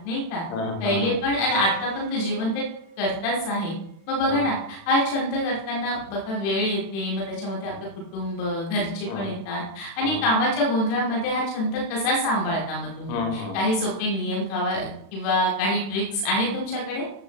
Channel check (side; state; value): right; late; 36 ms